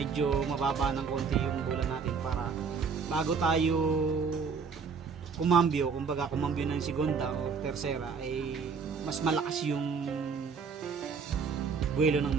mababa ng konti yung bola natin para bago tayo kumambyo, kumbaga kumambyo ng segunda o tersera, ay mas malakas yung buwelo ng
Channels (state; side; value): quieter; left; 5.5 dB